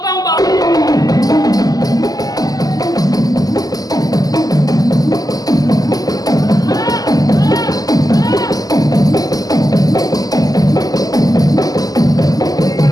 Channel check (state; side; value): late; right; 0.18 ms